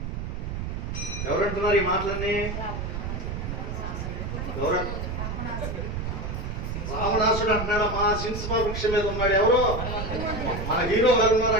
ఎవరంటున్నారు ఈ మాటలన్నీ? రావణాసుడు అంటున్నాడు. మా సింహ వృక్షం మీద ఉన్నాడు. ఎవరు? మన హీరో గారు ఉన్నారు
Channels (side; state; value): right; noise; rumble, 4 dB below the sound